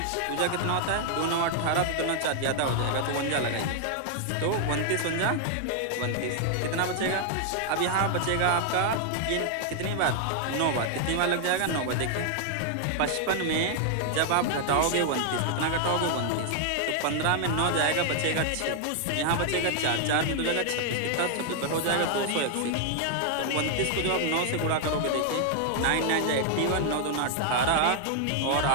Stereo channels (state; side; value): different; both; correlation 0.00